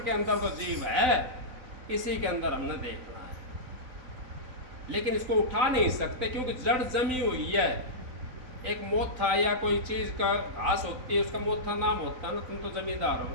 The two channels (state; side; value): late; left; 4.0 ms